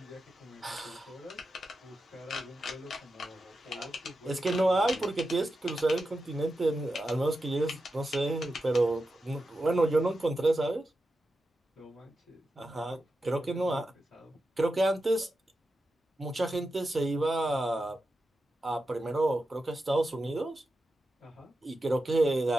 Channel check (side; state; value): both; normal; correlation 0.90